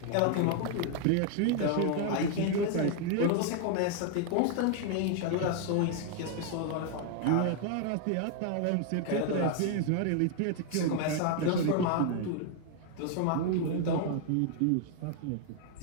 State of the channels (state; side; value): different; both; correlation 0.00